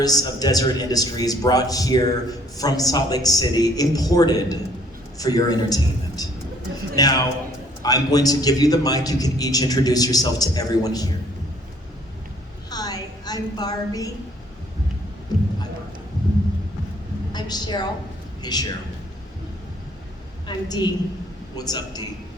of Deseret Industries brought here from Salt Lake City, imported for your entertainment. Now, I'm going to give you the mic. You can each introduce yourself to everyone here. Hi, I'm Barbie. Hi, Barbara. I'm Cheryl. Hey, Cheryl. I'm Dee. What's up, Dee?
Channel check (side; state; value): both; normal; correlation 0.61